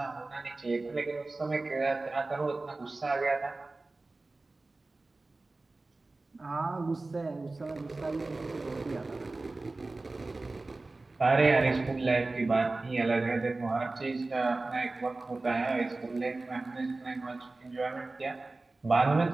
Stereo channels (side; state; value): left; quieter; 3.2 dB